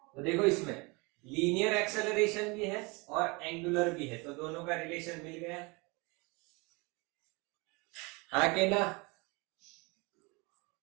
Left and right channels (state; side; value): quieter; left; 27.7 dB